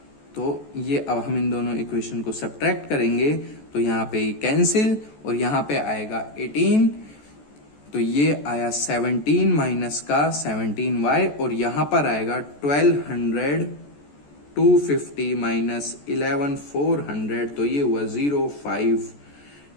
तो ये अब हम इन दोनों इक्वेशन को सब्ट्रैक्ट करेंगे तो यहाँ पे कैंसिल और यहाँ पे आएगा 18। तो ये आया 17 माइनस का 17y और यहां पर आएगा 1200 250 माइनस 11 400, तो ये हुआ 05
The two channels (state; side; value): late; right; 14 ms